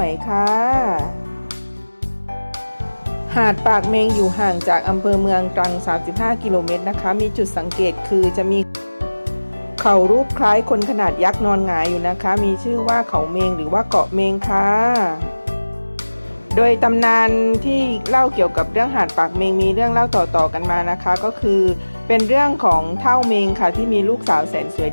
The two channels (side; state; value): both; inverted; correlation -1.00